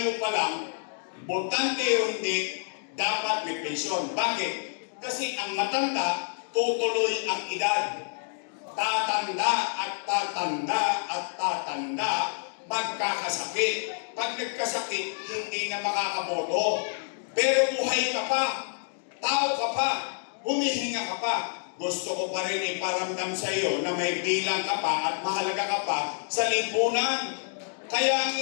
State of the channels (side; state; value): right; silent; 59 dB below the other